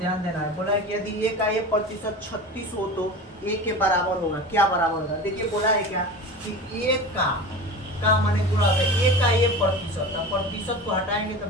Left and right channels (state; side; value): normal; both; correlation 0.32